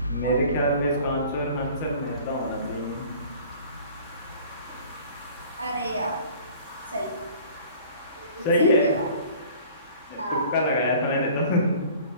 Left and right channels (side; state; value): both; inverted; correlation -0.48